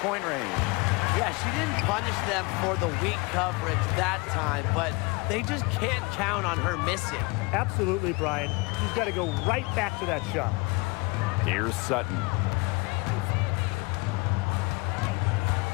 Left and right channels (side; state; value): right; quieter; 26.9 dB